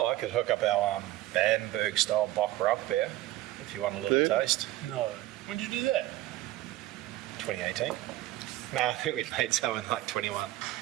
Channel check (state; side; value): quieter; left; 15.8 dB